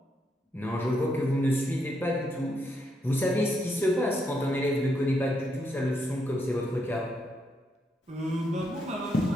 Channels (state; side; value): normal; both; correlation 0.78